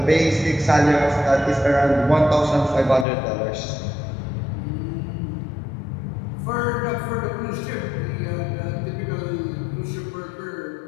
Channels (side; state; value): right; drops out; at 3.1 s